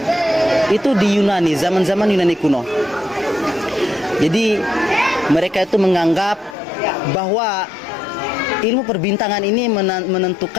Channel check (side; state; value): right; drops out; at 6.6 s